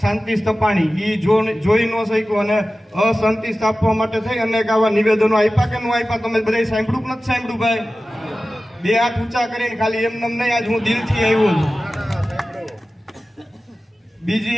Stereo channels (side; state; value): both; normal; correlation 0.95